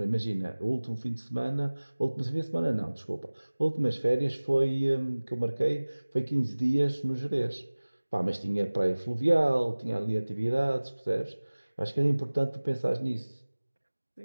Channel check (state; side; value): inverted; both; correlation -1.00